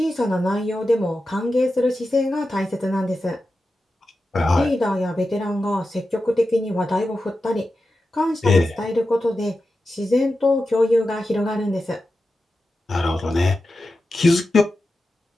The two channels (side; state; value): both; normal; correlation 0.91